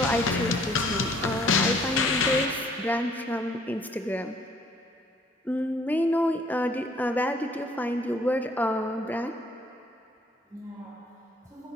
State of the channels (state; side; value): normal; both; correlation 0.61